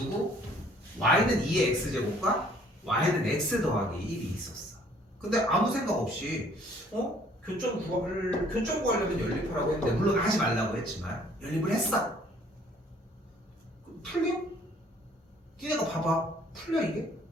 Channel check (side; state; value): both; normal; correlation 0.59